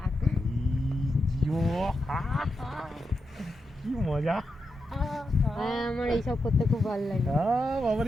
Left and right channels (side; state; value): both; normal; correlation 0.87